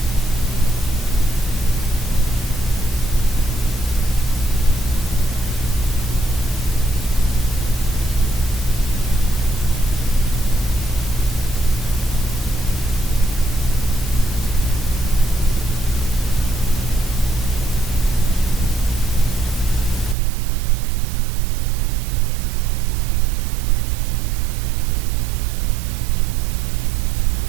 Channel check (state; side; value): drops out; left; at 20.2 s